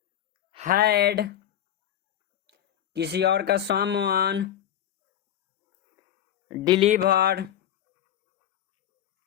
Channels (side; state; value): right; quieter; 10.8 dB